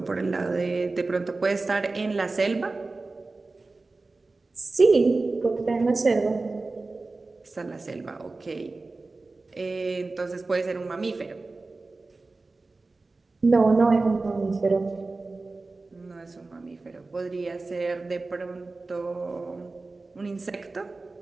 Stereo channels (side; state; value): left; quieter; 3.5 dB